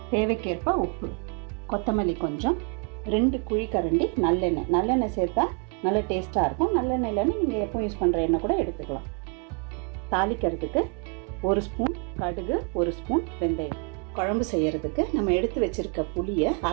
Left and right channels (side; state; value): left; quieter; 37.2 dB